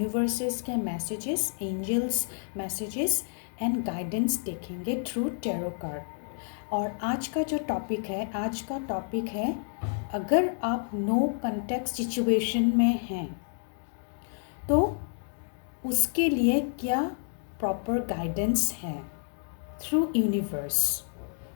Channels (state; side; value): silent; right; digital silence